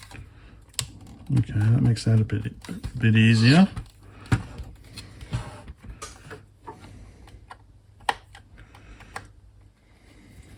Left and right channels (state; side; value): identical; both; correlation 1.00